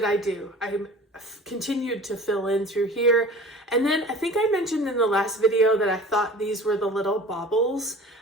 I do? I continued to fill in through here. And then I think I mentioned in the last video that I thought these were the little baubles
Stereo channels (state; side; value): normal; both; correlation 0.42